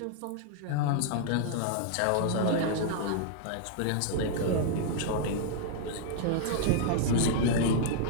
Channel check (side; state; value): both; different; correlation 0.00